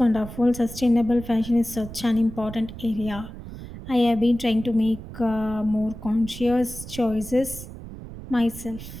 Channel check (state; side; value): noise; right; rumble, 12 dB below the sound